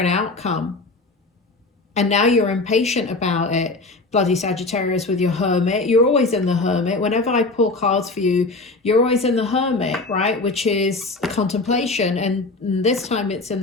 outcome, and now you're impatient about it. Bloody Sagittarius with your Hermit. You're always in the Hermit. Whenever I pull cards for you, you're always in the Hermit, right? Which is contemplation, and this time it's in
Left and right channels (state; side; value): quieter; right; 3.4 dB